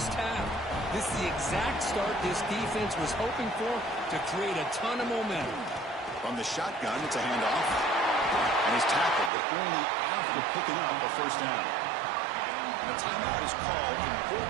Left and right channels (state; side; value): drops out; left; at 9.3 s